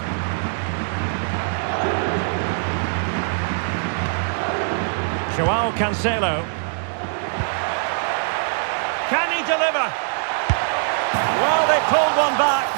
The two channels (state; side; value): silent; left; digital silence